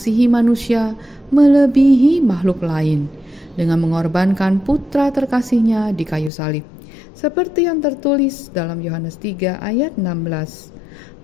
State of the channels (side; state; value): right; drops out; at 6.3 s